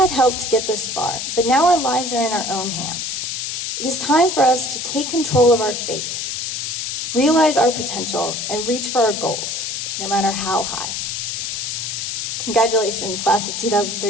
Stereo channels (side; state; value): left; noise; hiss, 3 dB below the sound